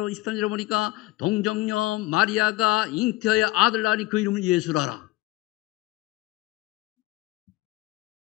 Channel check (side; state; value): right; quieter; 19.3 dB